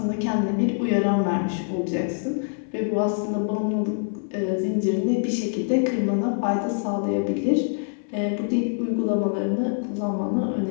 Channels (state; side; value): silent; right; 62 dB below the other